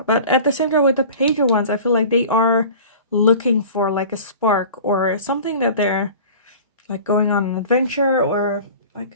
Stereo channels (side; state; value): both; inverted; correlation -0.40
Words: But at the same time, with the Page of Wands, I feel like they are looking for like a spark or something, that they're like going on an adventure or